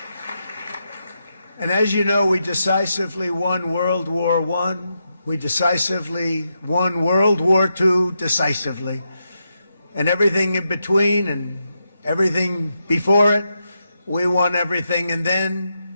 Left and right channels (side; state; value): both; inverted; correlation -0.84